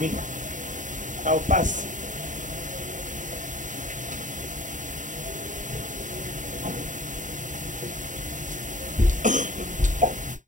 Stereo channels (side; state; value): left; late; 0.37 ms